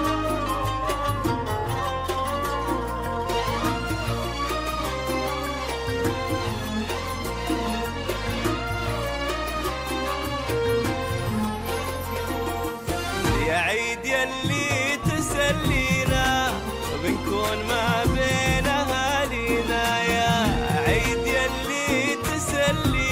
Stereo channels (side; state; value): both; identical; correlation 1.00